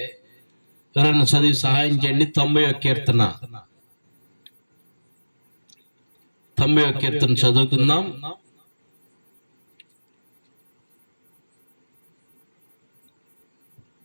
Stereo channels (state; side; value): inverted; both; correlation -1.00